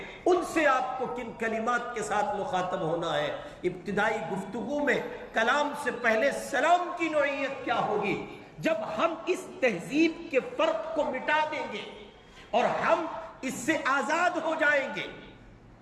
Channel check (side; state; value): both; identical; correlation 1.00